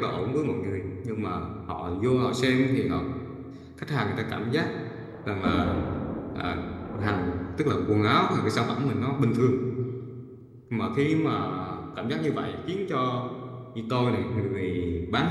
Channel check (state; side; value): identical; both; correlation 1.00